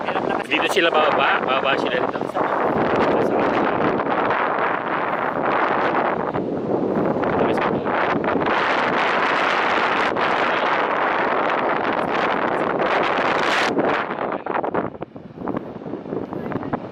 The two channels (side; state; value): both; identical; correlation 1.00